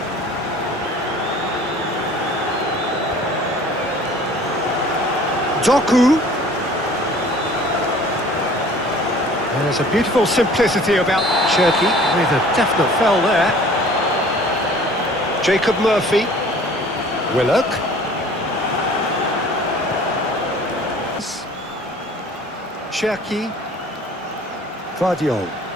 Doku. There's a beautiful simplicity about Cherki with a definite fell there. Jacob Murphy. Willock. Cherki. Guardiol.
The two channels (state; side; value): normal; both; correlation 0.49